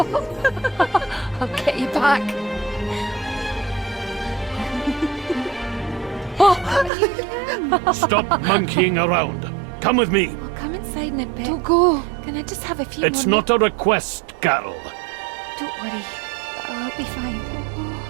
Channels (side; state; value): left; drops out; at 6.9 s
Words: I'll get you back. Stop monkeying around. Come with me. I'll come inside in a bit. Don't go. Can I just have a few It's more not a request, Carol. Don't worry. I'll be fine.